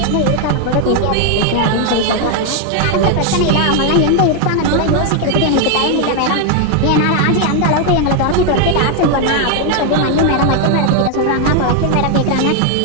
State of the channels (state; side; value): different; both; correlation 0.00